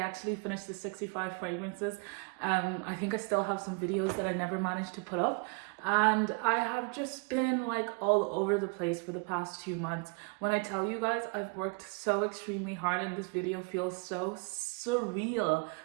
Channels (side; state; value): left; quieter; 32.1 dB